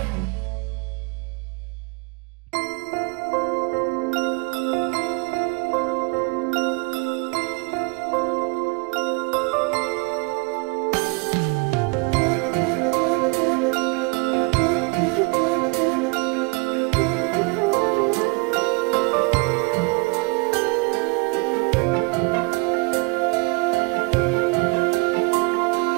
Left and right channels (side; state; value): left; quieter; 29.6 dB